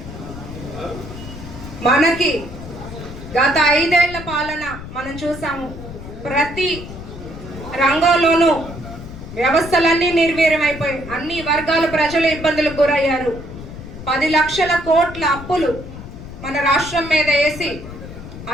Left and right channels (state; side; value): noise; left; rumble, 12 dB below the sound